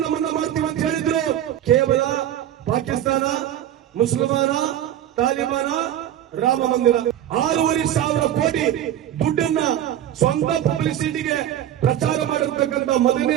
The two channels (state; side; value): quieter; left; 11.4 dB